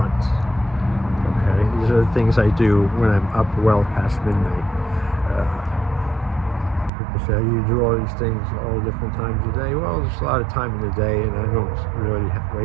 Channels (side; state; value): left; drops out; at 6.9 s